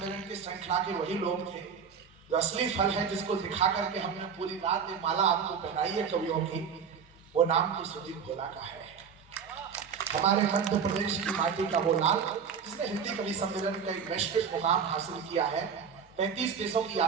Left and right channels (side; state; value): left; quieter; 6.7 dB